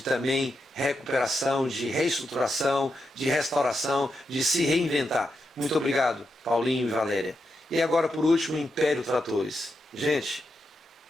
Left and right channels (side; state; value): both; normal; correlation 0.85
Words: também recuperação, de reestruturação, de restauração, de se reinventar. Muito obrigado, Paulinho e Valéria. E agora, por último, Império Tratores. Gente,